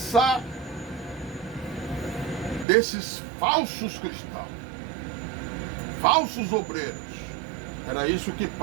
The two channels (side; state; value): left; drops out; at 2.7 s